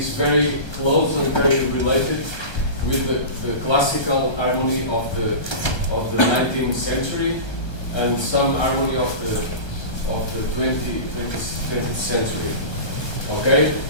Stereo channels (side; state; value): right; late; 1.3 ms